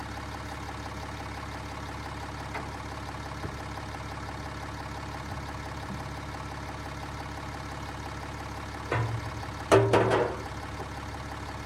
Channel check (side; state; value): both; identical; correlation 1.00